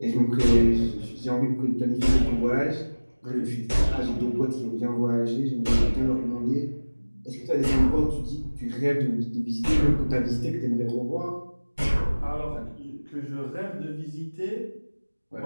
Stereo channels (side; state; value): both; inverted; correlation -1.00